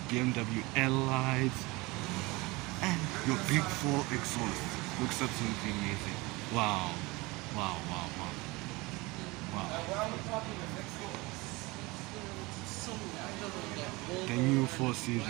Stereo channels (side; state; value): left; quieter; 23.4 dB